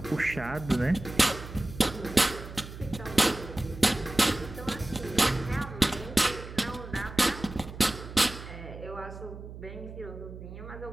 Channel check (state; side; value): noise; right; hum, 12 dB below the sound